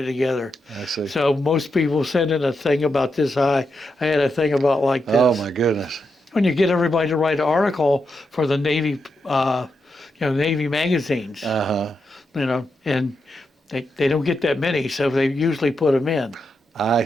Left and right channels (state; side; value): normal; both; correlation 0.85